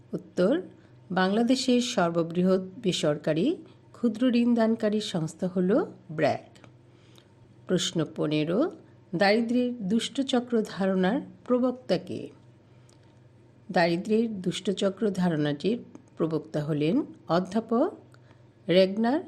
উত্তর, বাংলাদেশের সর্ববৃহৎ বেসরকারি ক্ষুদ্র ঋণদানকারী সংস্থা হল ব্র্যাক। প্রশ্ন 15, দারিদ্র্যের দুষ্টচক্র ধারণার প্রবক্তা কে? দারিদ্র্যের দুষ্টচক্র ধারণাটির প্রবক্তা হলেন অধ্যাপক রেগনার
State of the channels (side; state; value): both; identical; correlation 1.00